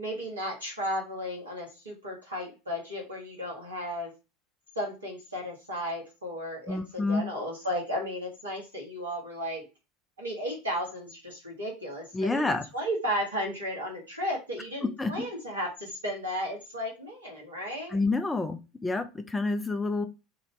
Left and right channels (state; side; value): normal; both; correlation 0.45